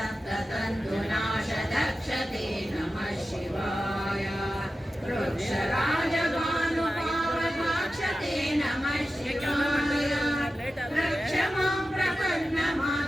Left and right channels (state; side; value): normal; both; correlation 0.93